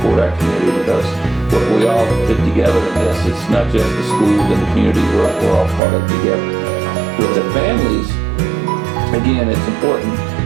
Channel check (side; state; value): left; drops out; at 5.8 s